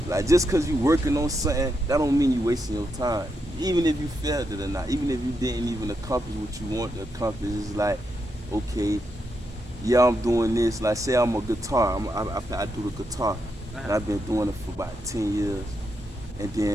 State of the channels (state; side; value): normal; both; correlation 0.82